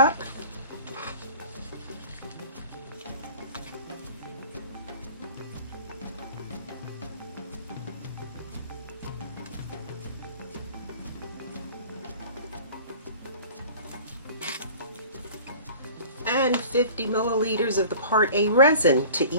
And 50 milliliters of the Part A resin to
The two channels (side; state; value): both; inverted; correlation -0.43